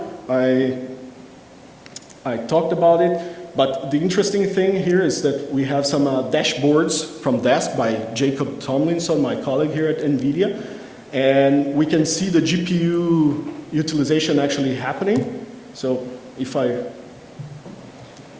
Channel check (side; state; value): both; identical; correlation 1.00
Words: I talked about it. But the interesting thing here is that we have some dashboards from Dask by Jacob Tomlinson, my colleague here at NVIDIA. And we can see the GPU utilization actually happening. So if I